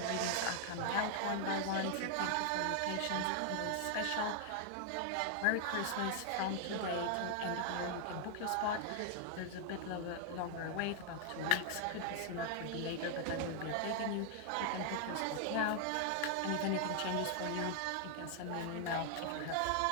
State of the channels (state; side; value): different; both; correlation 0.00